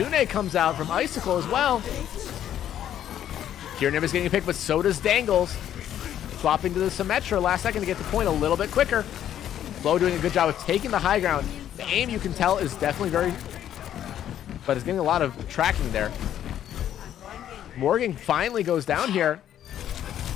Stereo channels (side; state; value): right; quieter; 10.8 dB